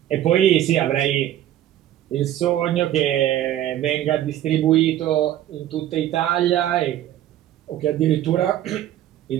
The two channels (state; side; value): quieter; left; 12.4 dB